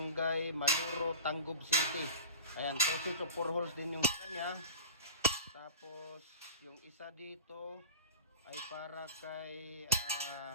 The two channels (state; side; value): inverted; both; correlation -0.35